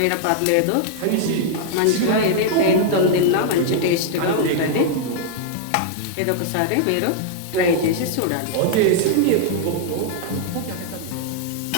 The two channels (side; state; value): both; different; correlation -0.01